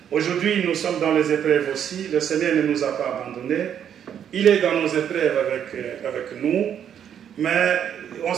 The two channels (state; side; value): quieter; left; 9.0 dB